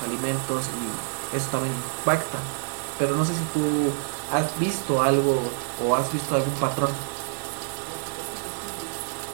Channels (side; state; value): left; quieter; 36.6 dB